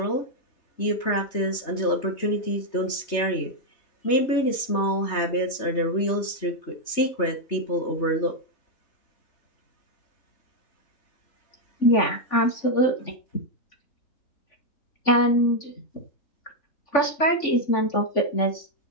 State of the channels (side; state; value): right; late; 3.5 ms